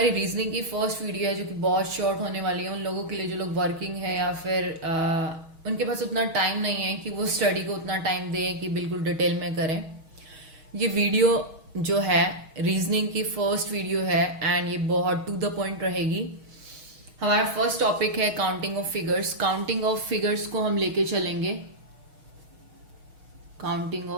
reasoning की फर्स्ट वीडियो है जो कि बहुत शॉर्ट होने वाली है उन लोगों के लिए जो लोग वर्किंग है या फिर उनके पास उतना टाइम नहीं है कि वो स्टडी को उतना टाइम दें कि बिल्कुल डिटेल में करें। ये वीडियो जो है रीजनिंग की फर्स्ट वीडियो है एंड ये बहुत टू द पॉइंट रहेगी। हमारा फर्स्ट टॉपिक है counting of figures. Counting of figures को हम लेके चलेंगे। Counting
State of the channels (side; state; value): left; late; 6.3 ms